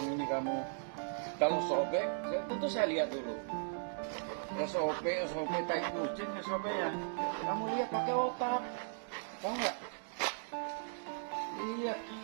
ini kamu? Kalau sobek, tentu saya lihat dulu. SOP tai kucing SOP-nya. Kamu lihat pakai otak. Tahu nggak? Lihat,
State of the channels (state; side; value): silent; left; digital silence